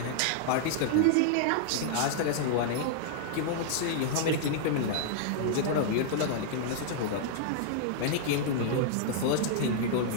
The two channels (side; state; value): both; different; correlation -0.01